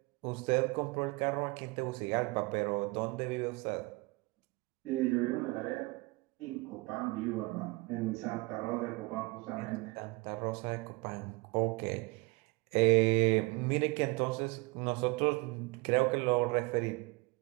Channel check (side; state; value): left; quieter; 25.2 dB